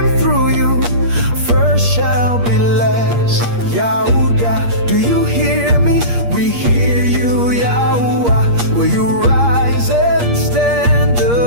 through you, first shall be last. Yahuda, do you hear me? We hear you, Yahuwah. Will you rise and stand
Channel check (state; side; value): late; left; 8.5 ms